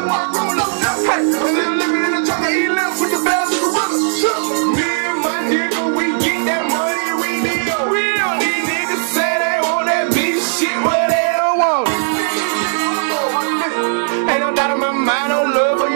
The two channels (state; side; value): silent; left; digital silence